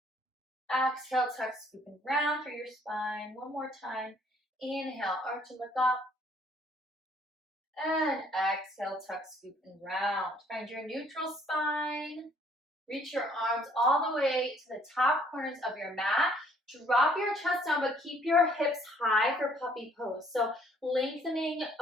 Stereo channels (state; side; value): normal; both; correlation 0.62